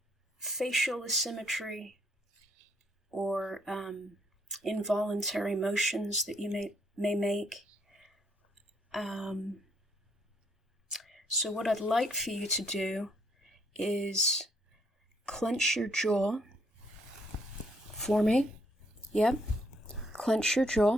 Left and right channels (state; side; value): normal; both; correlation 0.70